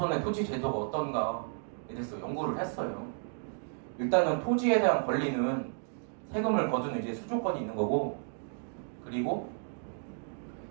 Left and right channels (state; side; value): silent; left; digital silence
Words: 토지 제도가 어떤가에 대해서 연구를 했어요. 일단은 토지에 대한 권리는 세금을 거두는 이제 수조권이 있는 거고, 그리고